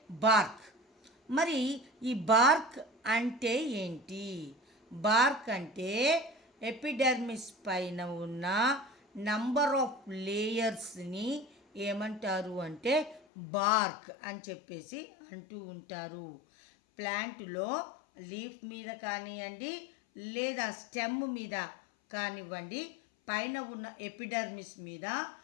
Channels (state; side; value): drops out; right; at 13.2 s